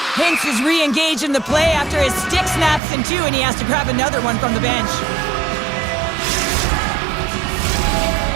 Hinks is re-engaged in the play after his stick snaps in two, and he has to grab another one from the bench.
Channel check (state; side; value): drops out; left; at 2.8 s